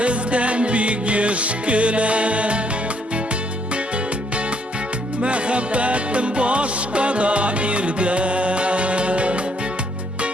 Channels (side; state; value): both; normal; correlation 0.69